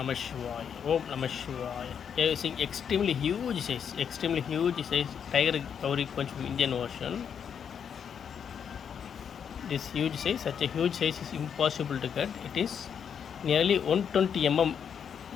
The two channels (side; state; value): right; quieter; 7.6 dB